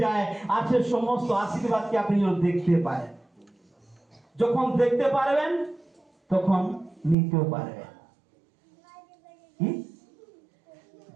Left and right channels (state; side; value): drops out; left; at 7.2 s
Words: যায়, আছে সমস্ত আশীর্বাদকে আপনি যেন দেখতে পারেন। যখন দেখতে পারবেন তখন নিতেও পারবেন। কি?